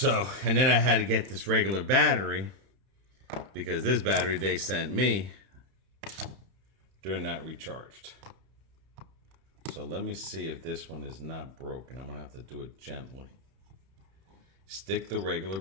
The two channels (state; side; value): late; left; 31 ms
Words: and then I had to get this regular battery, because this battery they sent me, they're not recharged. So let me see if this one is not broken. I'm gonna have to do it gently. Stick the regular